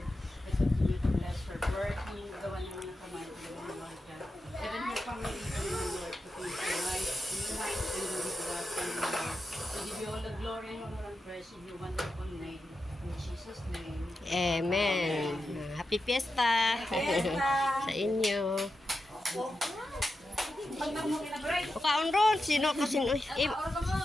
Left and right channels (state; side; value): normal; both; correlation 0.89